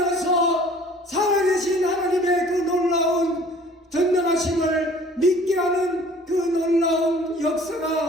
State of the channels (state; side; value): normal; both; correlation 0.51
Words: 살아계신 하나님의 그 놀라운 전능하심을 믿게 하는 그 놀라운